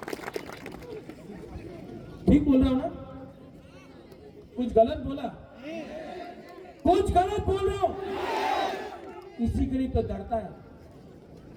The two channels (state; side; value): identical; both; correlation 1.00